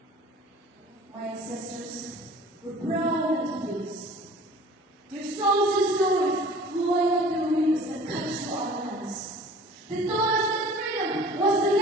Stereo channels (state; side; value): normal; both; correlation 0.46